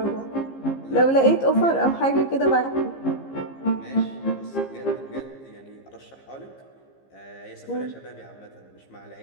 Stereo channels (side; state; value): right; late; 15 ms